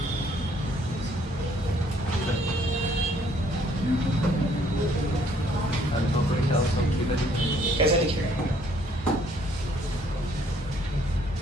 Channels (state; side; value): normal; both; correlation 0.63